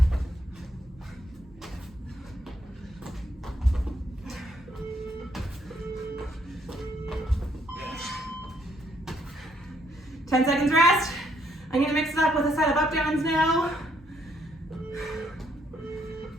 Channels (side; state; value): both; normal; correlation 0.71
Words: Ten seconds rest. I'm gonna mix it up with a set of up downs now.